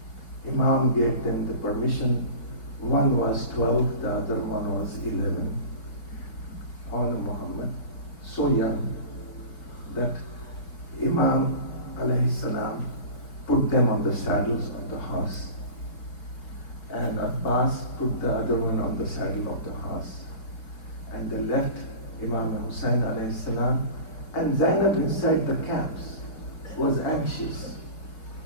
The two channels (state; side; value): late; right; 4.9 ms